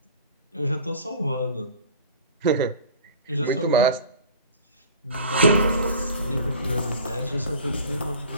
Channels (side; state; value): both; inverted; correlation -0.42